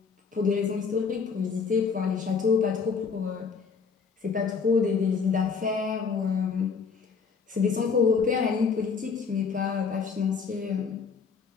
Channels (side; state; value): right; quieter; 5.5 dB